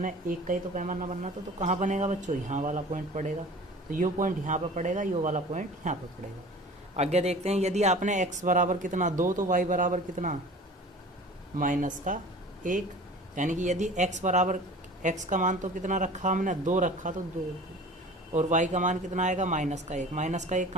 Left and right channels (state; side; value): normal; both; correlation 0.41